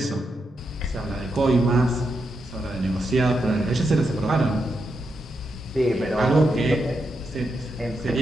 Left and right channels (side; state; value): both; normal; correlation 0.84